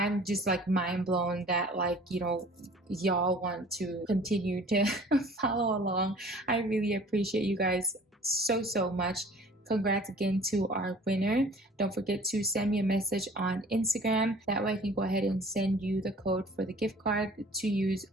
just like mind blown that, like, you know, y'all want to continue to follow along. I really appreciate you guys so much. Congrats again to our winner. Don't forget to send me a message on Instagram. That way I can go ahead and send you the code for the gift card to use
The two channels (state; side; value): normal; both; correlation 0.49